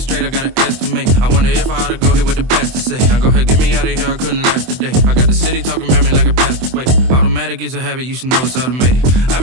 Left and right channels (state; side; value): late; left; 23 ms